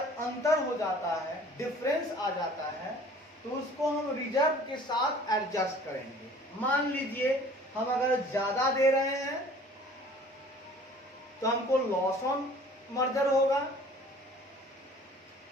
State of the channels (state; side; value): normal; both; correlation 0.50